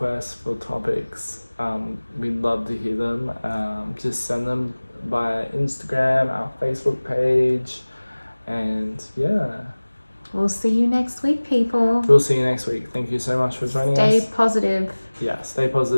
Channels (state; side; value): inverted; both; correlation -1.00